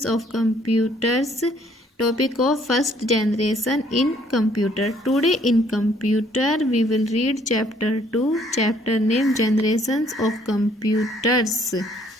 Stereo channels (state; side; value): normal; both; correlation 0.63